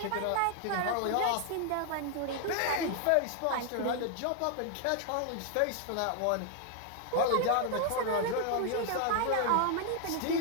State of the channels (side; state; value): both; different; correlation 0.00